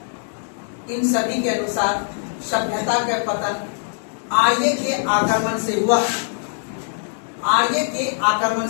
इन सभी के अनुसार सभ्यता का पतन आर्य के आक्रमण से हुआ, आर्य के आक्रमण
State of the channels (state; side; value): silent; right; digital silence